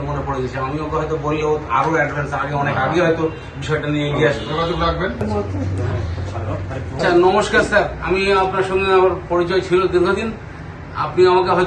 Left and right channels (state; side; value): identical; both; correlation 1.00